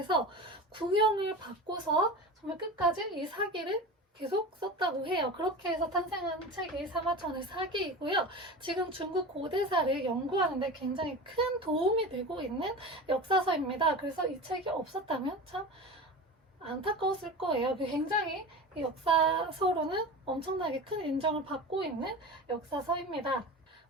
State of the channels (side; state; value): both; normal; correlation 0.30